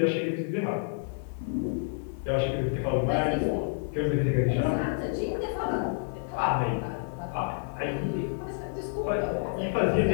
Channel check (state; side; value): silent; right; 59 dB below the other